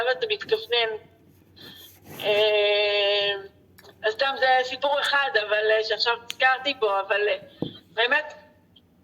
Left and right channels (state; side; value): identical; both; correlation 1.00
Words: אתה מתכוונן. אז סתם זה סיפור אחד, אבל שעכשיו הזכרתי בו, אבל באמת